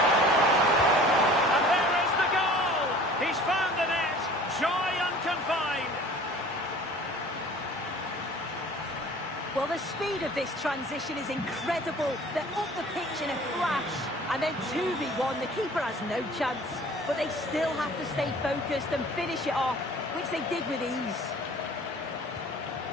Well, the speed of this transition is incredible. They're up the pitch in a flash. And then 2v1, the keeper has no chance. But they still have to stay focused and finish it off, which they did with ease.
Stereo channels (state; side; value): normal; both; correlation 0.47